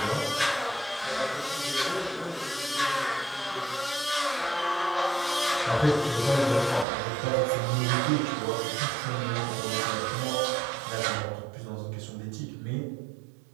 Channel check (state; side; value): drops out; left; at 6.9 s